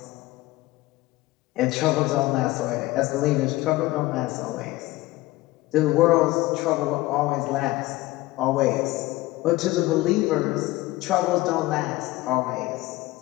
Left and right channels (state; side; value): quieter; right; 18.8 dB